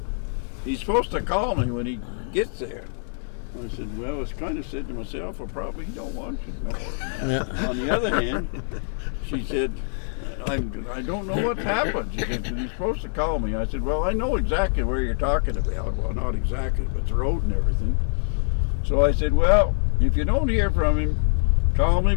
he's supposed to call me when he gets there. I said, well, I was kind of said to myself, I probably don't want you to know her. Yeah. On the other hand, she said, I don't know what's happened. She said, he's supposed to call me. I said, well, I know exactly where you're talking about. Well, not exactly, but the road and everything. So I said, well, if you don't hear from him, call me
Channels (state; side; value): silent; right; digital silence